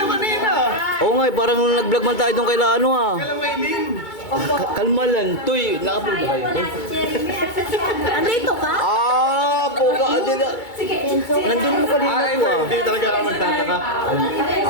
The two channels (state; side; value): late; right; 2.3 ms